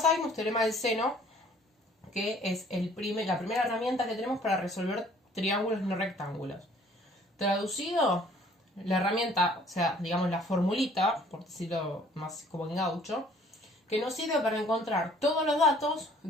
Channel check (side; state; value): both; normal; correlation 0.56